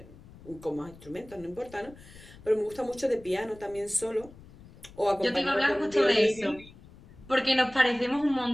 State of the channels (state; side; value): noise; left; rumble, 21 dB below the sound